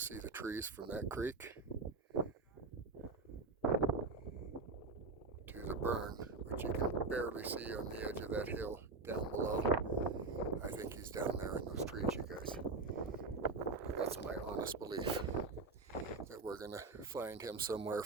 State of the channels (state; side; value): quieter; left; 3.9 dB